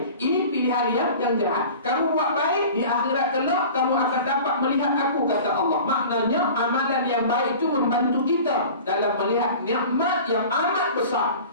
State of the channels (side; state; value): both; inverted; correlation -0.40